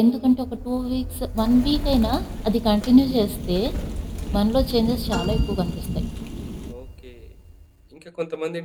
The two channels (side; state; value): both; identical; correlation 1.00